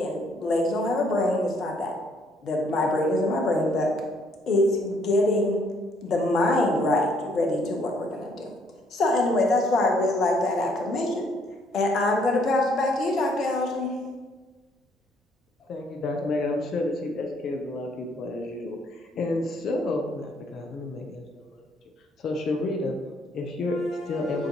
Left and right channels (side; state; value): both; normal; correlation 0.67